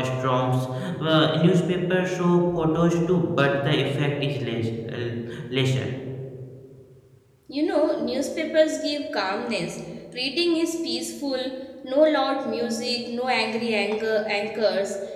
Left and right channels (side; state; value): both; identical; correlation 1.00